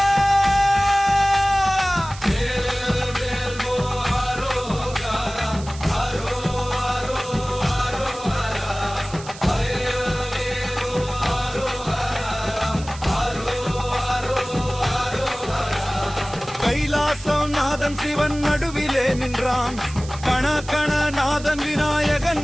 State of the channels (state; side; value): noise; right; hiss, 16 dB below the sound